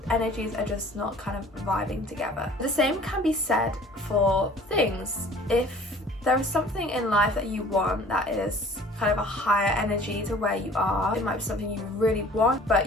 energies are just not kind of vibing together. The same can be said for things. If there is something in life that you want that is kind of a higher energy to where you are, it might be something you really want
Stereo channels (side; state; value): both; normal; correlation 0.49